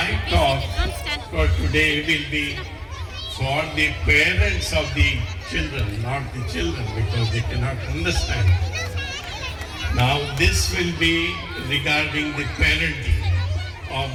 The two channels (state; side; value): identical; both; correlation 1.00